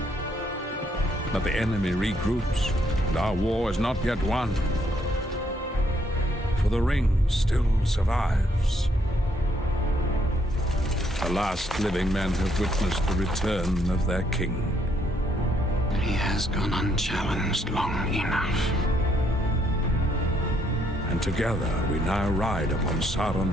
But the enemy regroups, and our war is not yet won. For the ring still survives. The last living men have witnessed the return of their king. He has gone unchallenged long enough. And together we now ride upon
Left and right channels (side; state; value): both; normal; correlation 0.71